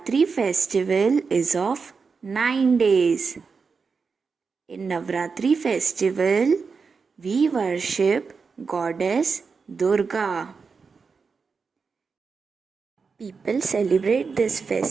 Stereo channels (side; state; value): left; quieter; 5.1 dB